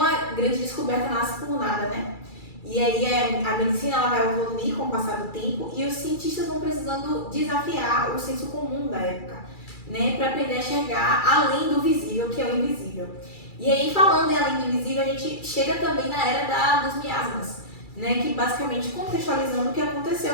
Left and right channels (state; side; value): late; right; 2.3 ms